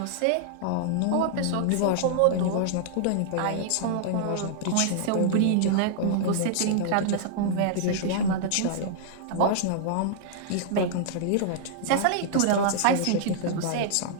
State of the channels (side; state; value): both; different; correlation -0.01